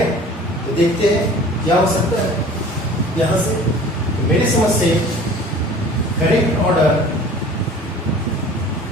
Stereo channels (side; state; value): both; normal; correlation 0.45